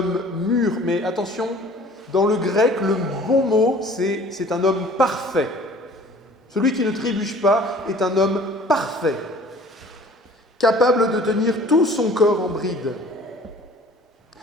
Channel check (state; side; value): normal; both; correlation 0.49